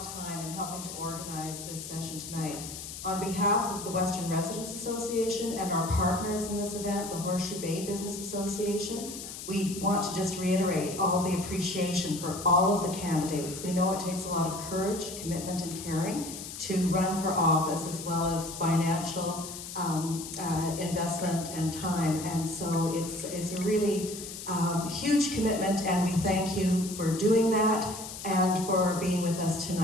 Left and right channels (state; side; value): noise; left; hiss, 10 dB below the sound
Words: time in helping to organize this session tonight. On behalf of the Western Residents Association and our partners in this event, the Horseshoe Bay Business Association, we want to just reiterate all the appreciation for all of the candidates. We know it takes a lot of courage, commitment, and caring to run for office, as well as financial investment and time. And so it's a really huge commitment, and we thank you for doing that and for being with us